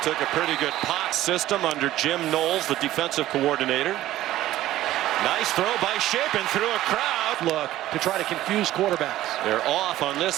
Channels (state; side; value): quieter; left; 14.5 dB